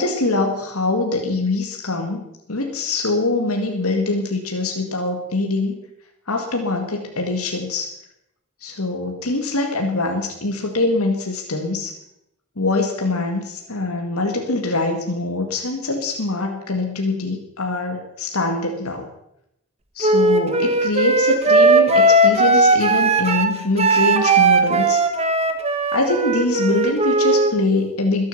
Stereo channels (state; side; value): normal; both; correlation 0.02